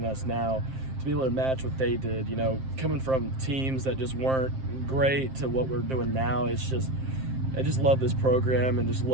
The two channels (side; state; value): left; late; 7.6 ms